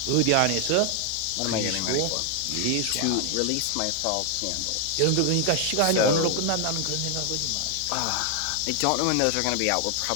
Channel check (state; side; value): different; both; correlation 0.00